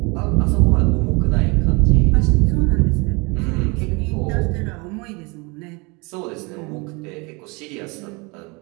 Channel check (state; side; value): quieter; left; 28.2 dB